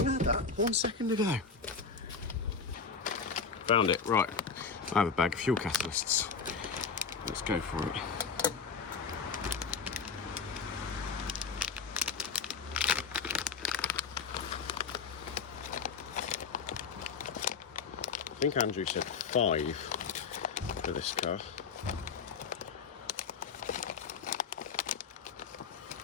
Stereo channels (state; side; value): quieter; right; 5.5 dB